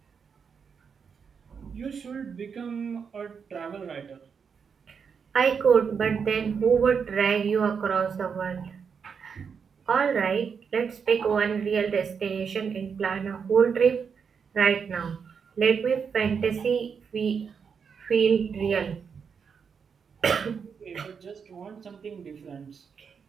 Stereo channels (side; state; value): left; quieter; 6.3 dB